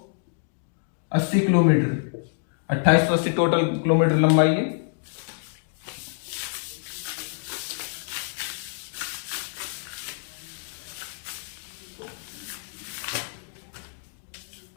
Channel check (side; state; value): right; silent; digital silence